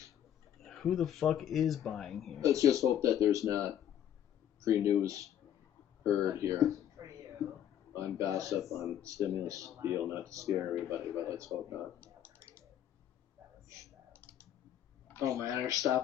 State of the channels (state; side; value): quieter; right; 10.4 dB